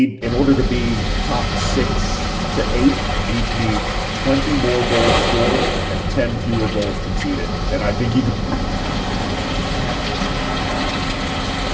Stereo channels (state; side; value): identical; both; correlation 1.00